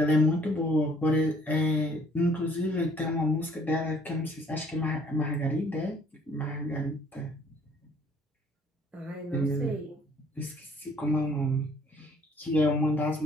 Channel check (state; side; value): normal; both; correlation 0.59